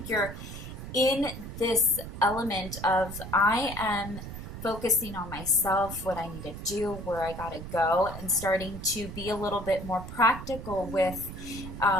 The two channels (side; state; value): right; noise; rumble, 10 dB below the sound